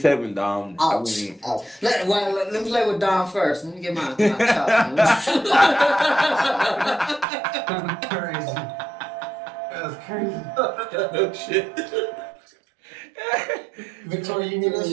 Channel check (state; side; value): drops out; left; at 7.2 s